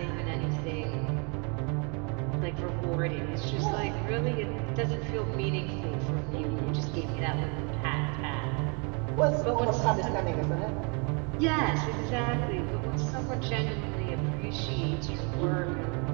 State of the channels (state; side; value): quieter; left; 34.1 dB